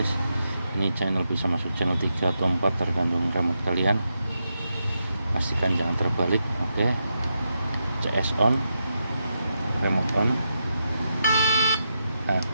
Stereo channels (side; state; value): both; inverted; correlation -0.85